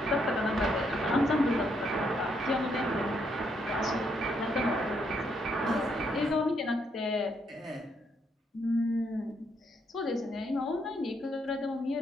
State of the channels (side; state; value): both; normal; correlation 0.75